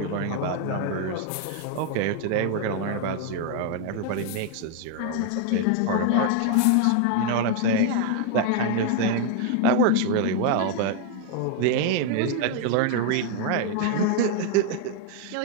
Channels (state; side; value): different; both; correlation 0.00